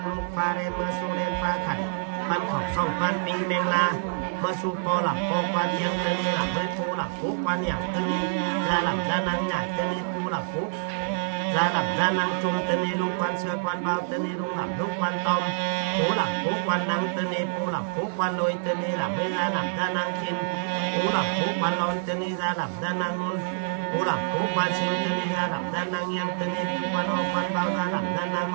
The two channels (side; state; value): left; silent; digital silence